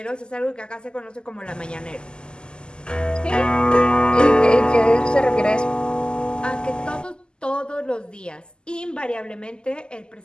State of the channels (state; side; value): late; right; 0.048 ms